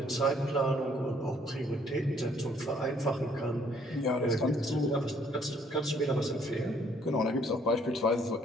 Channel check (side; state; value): both; normal; correlation 0.64